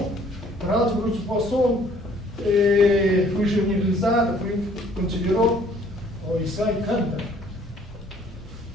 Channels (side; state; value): both; normal; correlation 0.58